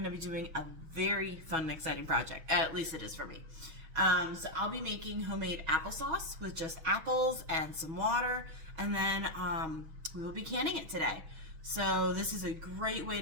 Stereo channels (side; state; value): left; late; 6.2 ms